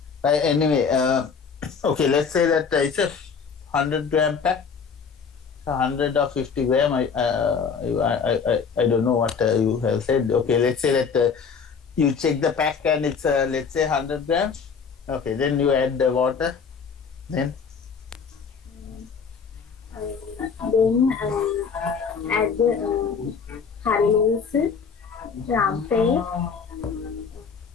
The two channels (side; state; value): right; quieter; 6.0 dB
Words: Anyway, okay, let's say that it's a 100-gram pack, 100 or 50 gram. I don't know what you have said. Okay, let's say that you check the pack and it's let's say 100 grams. Okay, then you add the water. Then add the curry leaves, rampe,